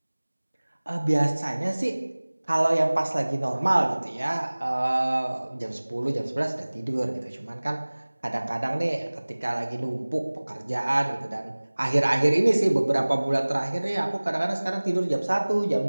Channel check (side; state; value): both; inverted; correlation -1.00